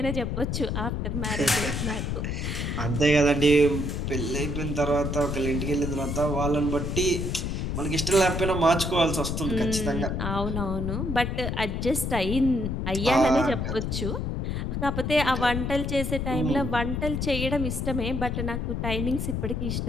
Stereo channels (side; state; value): left; noise; rumble, 2 dB below the sound